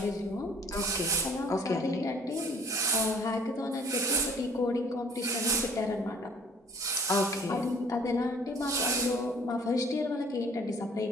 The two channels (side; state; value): both; normal; correlation 0.53